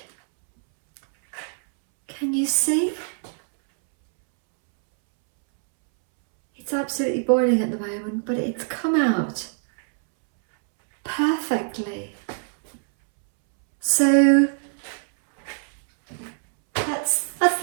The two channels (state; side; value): silent; left; 63 dB below the other